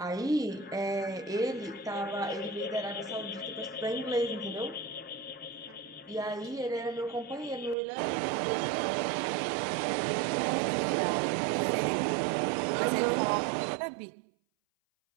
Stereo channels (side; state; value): left; drops out; at 7.8 s